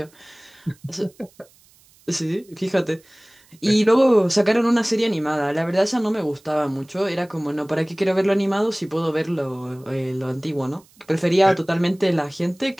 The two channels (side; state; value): right; noise; hiss, 30 dB below the sound